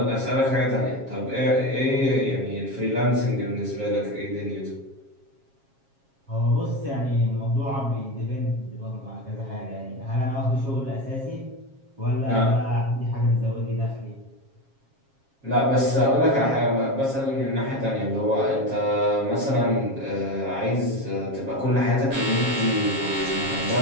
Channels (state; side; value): late; left; 7.4 ms